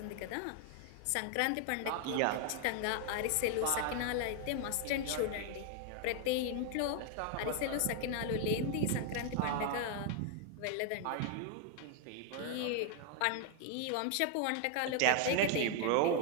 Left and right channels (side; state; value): both; different; correlation 0.00